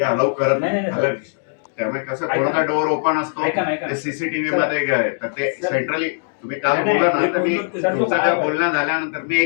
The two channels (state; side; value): silent; right; digital silence